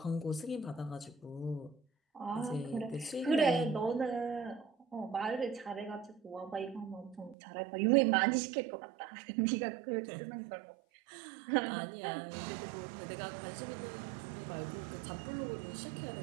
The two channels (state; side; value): drops out; left; at 7.4 s